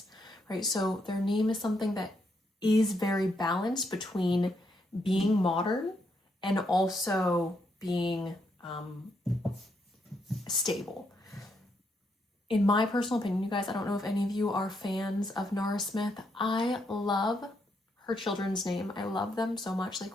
right? So their name is something that is very balanced between being modern and also being stable. In my personal opinion, you guys, I don't know if any of you are fans of Nara Smith. I love her children's name. I love them so much.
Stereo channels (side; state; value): both; normal; correlation 0.77